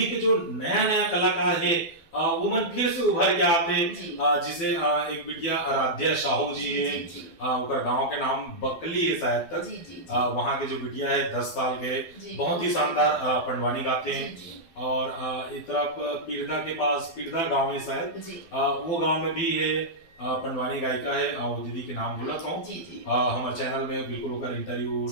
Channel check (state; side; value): late; right; 12 ms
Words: के जो नया नया कलाकार है वो मन फिर से उभर के आते, जिसे एक बिटिया आराध्या साहू जी है, उनका गांव के नाम बकली है शायद तक, वहाँ के जो बिटिया है 10 साल के, बहुत ही शानदार पंडवानी गाते हैं। और इस तरफ पीरदा के पास पीरदा गांव है शायद, वो गांव में भी है पंडवानी गायिका है, वो दीदी के नाम भूला था हमारे चैनल में बिल्कुल होकर इंटरव्यू